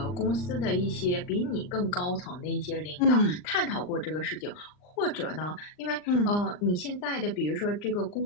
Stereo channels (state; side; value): late; right; 39 ms